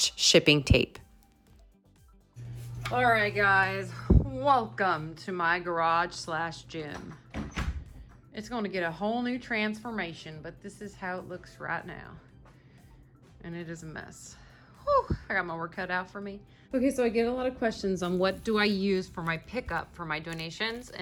shipping tape. All right, guys, welcome to my garage slash gym. It's going to get a whole new transformation, but this is how it looks right now. And it is a mess. Whew, I got my work cut out for me. Okay, so I get a lot of questions on what do I use for my pickup for my donations,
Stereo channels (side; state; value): both; identical; correlation 1.00